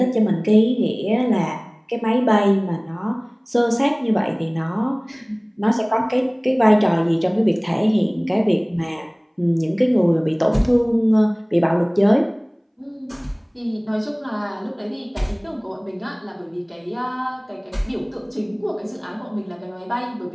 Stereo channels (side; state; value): both; identical; correlation 1.00